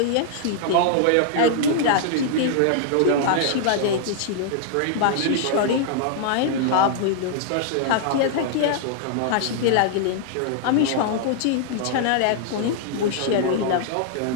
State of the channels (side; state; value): both; different; correlation -0.01